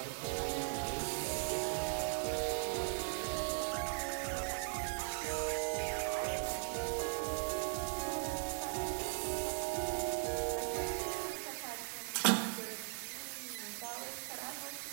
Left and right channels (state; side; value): silent; left; 52 dB below the other